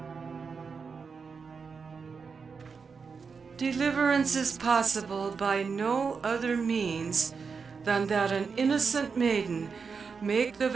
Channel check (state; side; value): quieter; left; 5.4 dB